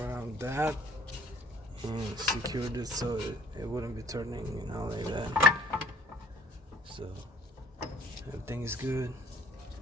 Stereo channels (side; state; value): both; normal; correlation 0.57